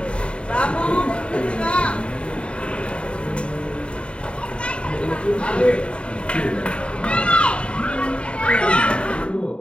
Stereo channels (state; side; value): late; right; 0.057 ms